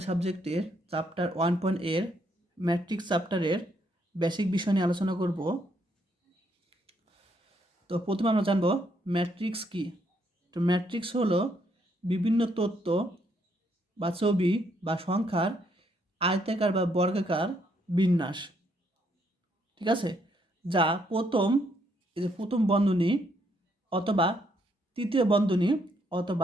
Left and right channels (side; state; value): both; normal; correlation 0.72